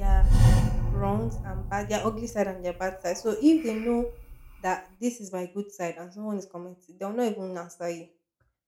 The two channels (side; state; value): both; identical; correlation 1.00